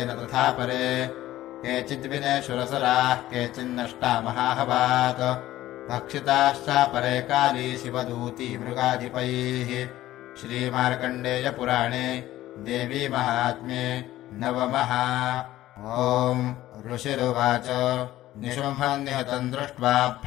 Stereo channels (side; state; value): right; quieter; 14.9 dB